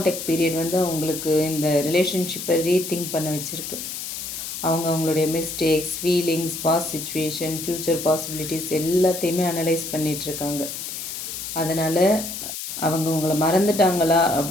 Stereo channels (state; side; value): noise; left; hiss, 7 dB below the sound